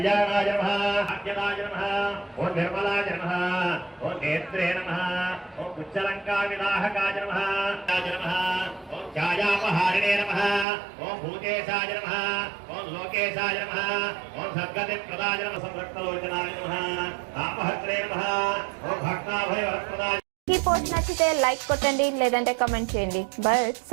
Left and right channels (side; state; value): left; drops out; at 10.7 s